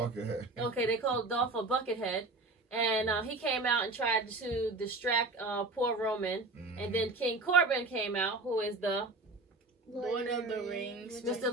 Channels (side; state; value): left; quieter; 3.2 dB